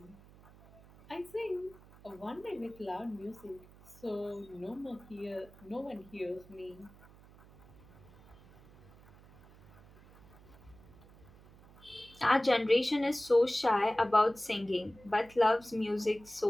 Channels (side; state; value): right; noise; hum, 23 dB below the sound